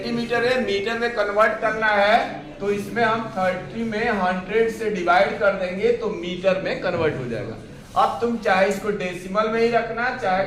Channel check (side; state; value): both; identical; correlation 1.00